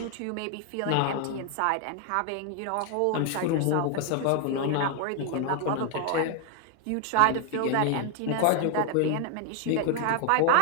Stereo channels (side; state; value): both; different; correlation 0.00